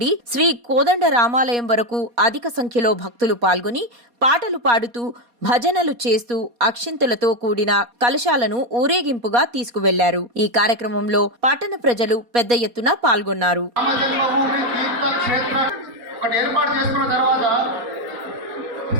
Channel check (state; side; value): late; left; 4.2 ms